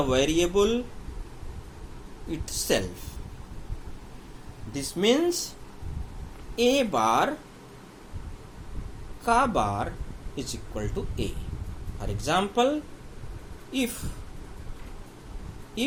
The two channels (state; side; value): identical; both; correlation 1.00